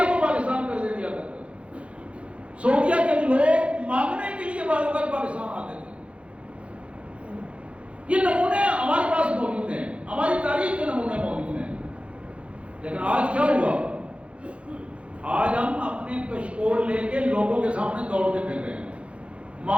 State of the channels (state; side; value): late; left; 0.061 ms